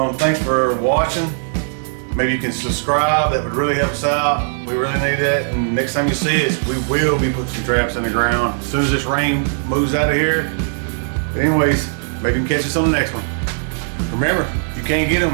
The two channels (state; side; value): silent; left; 67 dB below the other